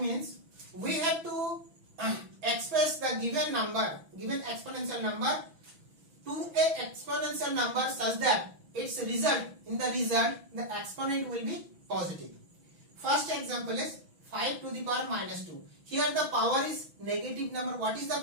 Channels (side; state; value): left; late; 6.1 ms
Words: we have to express the given number, given exponential number to a exponential number such that its result, the exponent will be positive. First example is 5 to the power minus 2. Here the power is negative number. What is the